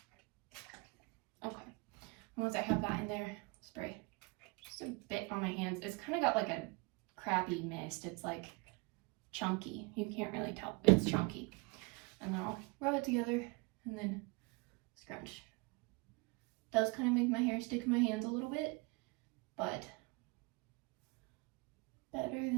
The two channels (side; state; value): left; quieter; 27.4 dB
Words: Okay, and once I have that in there, spray just a bit on my hands. It's kind of got like a crappy mist. It's like chunky. You can't really tell, it's chunky. And then I'll rub it together and then scrunch. Does kind of make my hair stick in my hands a little bit, but better